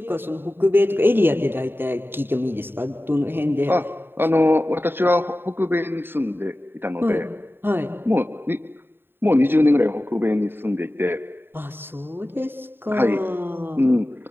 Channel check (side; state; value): left; late; 0.10 ms